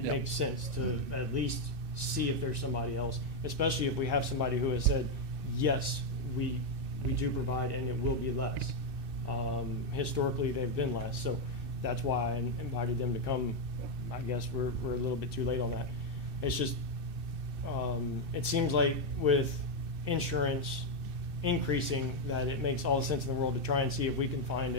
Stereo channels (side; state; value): left; late; 2.6 ms